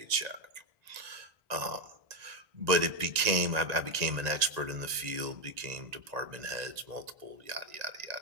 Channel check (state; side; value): late; left; 1.8 ms